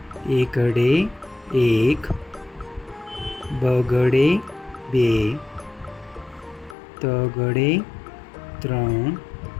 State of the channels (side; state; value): right; drops out; at 6.8 s